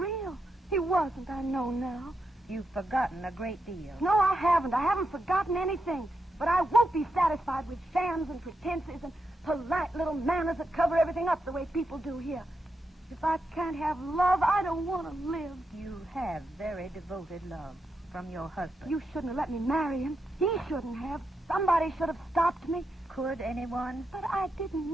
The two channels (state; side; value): normal; both; correlation 0.85